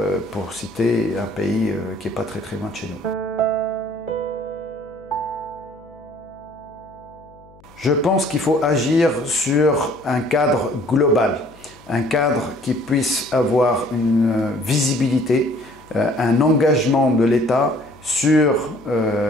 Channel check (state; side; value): noise; left; hum, 26 dB below the sound